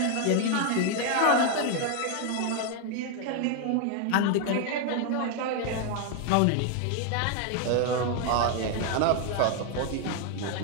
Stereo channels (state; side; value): different; both; correlation 0.01